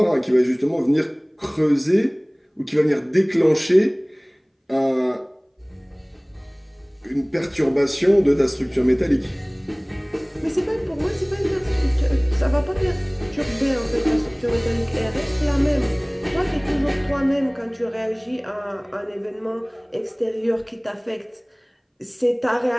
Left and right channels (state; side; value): identical; both; correlation 1.00